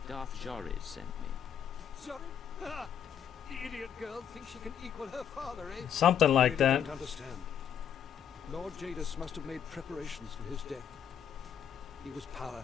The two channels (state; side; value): quieter; right; 8.6 dB